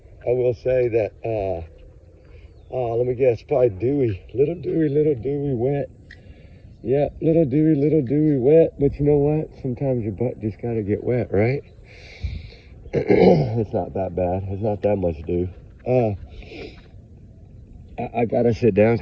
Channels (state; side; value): identical; both; correlation 1.00